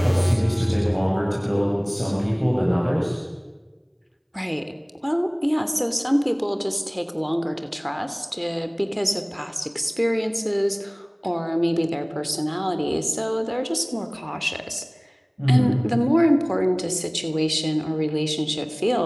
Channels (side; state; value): both; identical; correlation 1.00